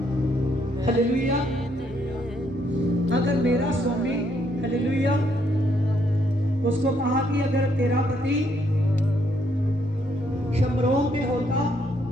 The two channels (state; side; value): normal; both; correlation 0.72